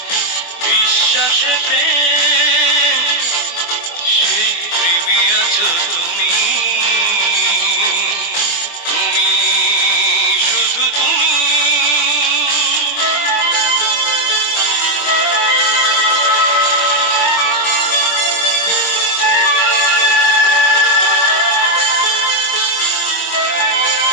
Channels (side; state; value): right; late; 24 ms